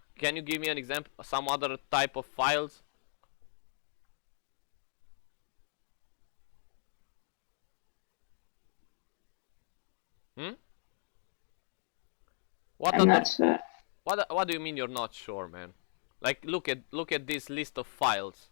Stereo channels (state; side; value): silent; right; 53 dB below the other